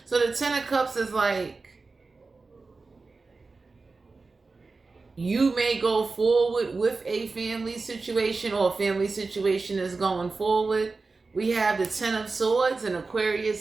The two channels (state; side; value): quieter; left; 3.9 dB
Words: So the Ten of Cups is like, you may go forward with a family situation, or a family situation is going forward. We have the Ten of Swords and